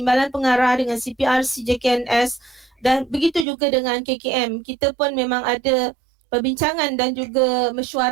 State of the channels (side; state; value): left; drops out; at 3.5 s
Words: pengarah, dengan CPRC JKNS, dan begitu juga dengan KKM. Kita pun memang ada perbincangan dan juga